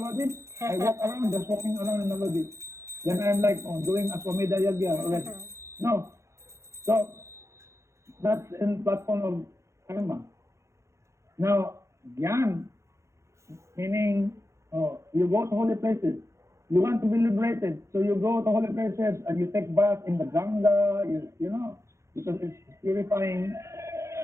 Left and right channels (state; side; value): late; left; 0.14 ms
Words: I walk around, just walking around in Navadip. Then I'm like, oh, doing Aswamedha Yagya already. No. So, that's in platform of karma. Now, Gyan, meaning, you go to holy places. You want to be liberated, so you go to holy places and you take bath in the Ganga, you know, because it's purifying.